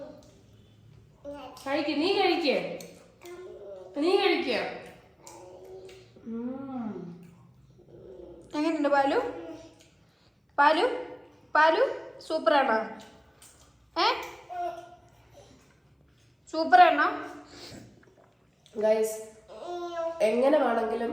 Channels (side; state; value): both; identical; correlation 1.00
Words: കഴിക്ക. നീ കഴിക്കേ, നീ കഴിക്ക. എങ്ങനെയുണ്ട് പാലു? പാലു പാലു സൂപ്പറാണോ? സൂപ്പറാണോ ഗൈസ്? എങ്ങനെ വേണമെങ്കിലും